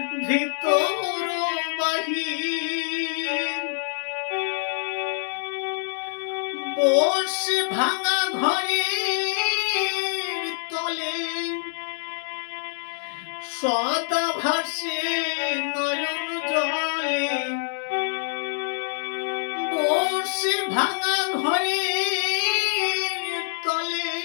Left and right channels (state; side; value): silent; right; digital silence